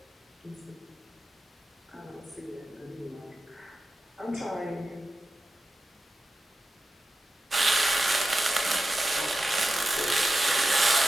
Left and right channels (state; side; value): normal; both; correlation 0.91